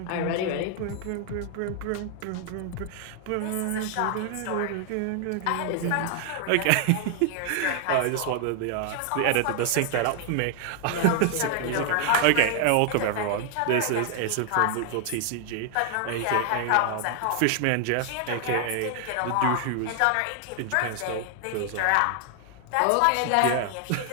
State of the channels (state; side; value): different; both; correlation 0.00